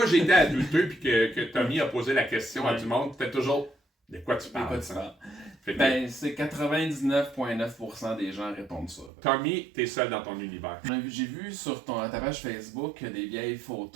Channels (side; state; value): left; drops out; at 9.1 s